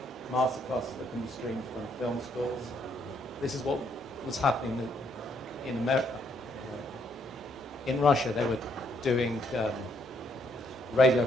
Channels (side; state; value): both; normal; correlation 0.71